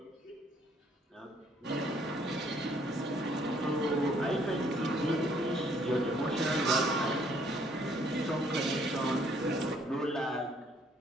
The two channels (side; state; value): both; normal; correlation 0.64